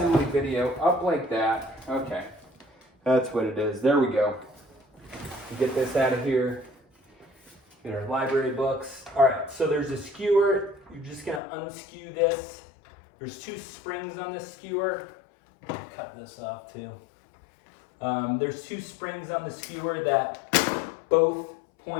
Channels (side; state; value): right; drops out; at 11.4 s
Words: video, up like that. Okay, that's what it is. There we go. Get this out of here. Get our library books. All right, so there's a skewer. You're just gonna unskew this. There's 2 springs on this skewer. Cut this off too. There's 2 springs on the skewer that both